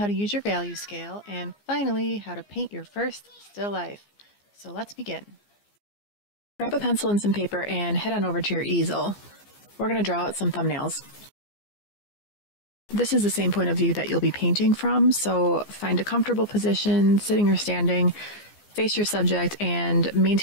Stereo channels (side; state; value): right; late; 15 ms